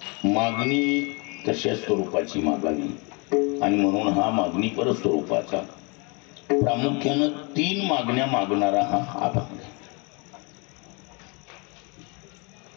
मागणी तशा स्वरूपाची मागावी आणि म्हणून हा मागणीपर स्वरूपाचा प्रामुख्यानं 3 मागण्या मागणारा हा अभंग.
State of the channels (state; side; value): quieter; right; 31.2 dB